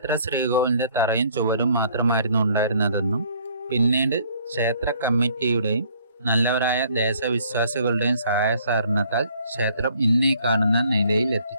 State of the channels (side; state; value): both; inverted; correlation -0.60